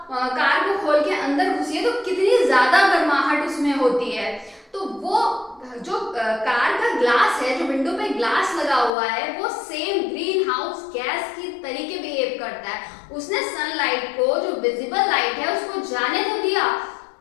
कार को खोल के अंदर घुसिए तो कितनी ज्यादा गर्माहट उसमें होती है। तो वो जो कार का ग्लास है, जो विंडो पे ग्लास लगा हुआ है, वो सेम ग्रीन हाउस गैस की तरीके बिहेव करता है। उसने सनलाइट को, जो विजिबल लाइट है, उसको जाने तो दिया।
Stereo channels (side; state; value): right; drops out; at 8.9 s